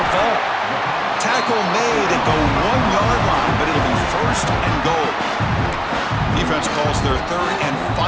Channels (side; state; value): both; identical; correlation 1.00